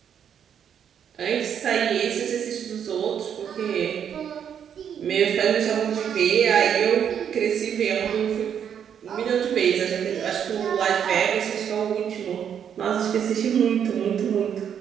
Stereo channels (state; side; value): quieter; left; 8.4 dB